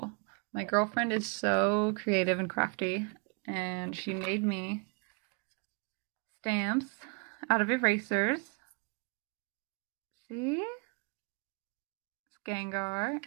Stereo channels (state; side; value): quieter; left; 35.6 dB